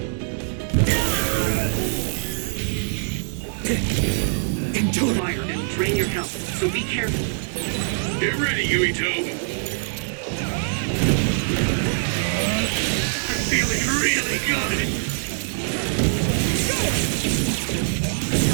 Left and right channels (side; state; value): left; silent; digital silence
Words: fire and drain your health, so be careful. Get ready, Yuito. I'm feeling really good.